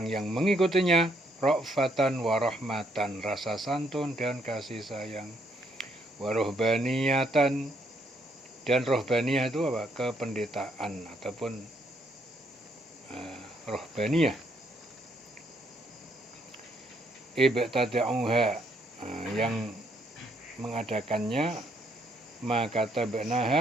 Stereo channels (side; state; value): both; normal; correlation 0.71